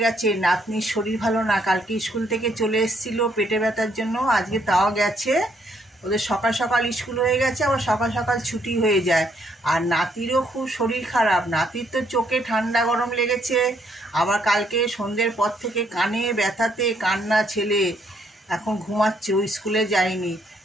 গেছে, নাতনির শরীর ভালো না, কালকে স্কুল থেকে চলে এসেছিল পেটে ব্যথার জন্য, আজকে তাও গেছে। ওদের সকাল সকাল স্কুল হয়ে গেছে, আবার সকাল সকাল ছুটি হয়ে যায়। আর নাতিরও খুব শরীর খারাপ, নাতির তো চোখে ঠান্ডা গরম লেগেছে, আবার কালকে সন্ধ্যের পর থেকে কানে ব্যথাতে কান্না ছেলে, এখন ঘুমাচ্ছে, ও স্কুলে যায়নি।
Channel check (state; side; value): normal; both; correlation 0.70